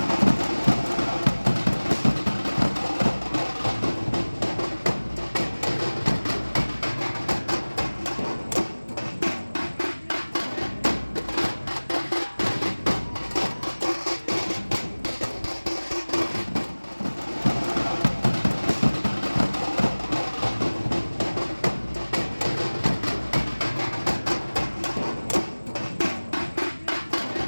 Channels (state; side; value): inverted; both; correlation -1.00